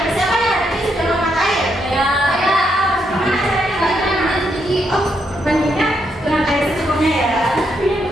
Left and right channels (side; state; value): both; normal; correlation 0.78